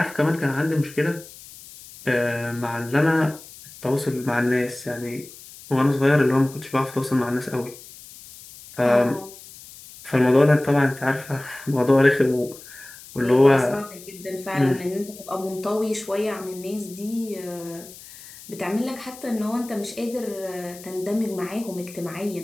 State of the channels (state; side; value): noise; left; hiss, 18 dB below the sound